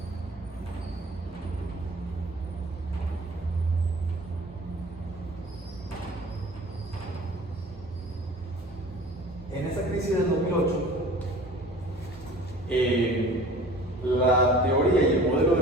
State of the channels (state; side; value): normal; both; correlation 0.45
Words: En esa crisis del 2008, la teoría y el modelo